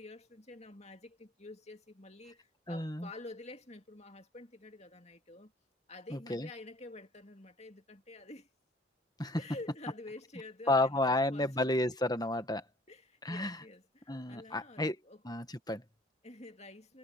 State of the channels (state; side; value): normal; both; correlation 0.54